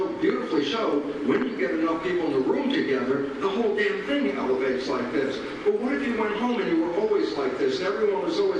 beautifully showed, when you get enough people in the room together, the whole damn thing elevates like this. But what if you went home and you were always like this, and everyone was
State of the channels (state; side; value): identical; both; correlation 1.00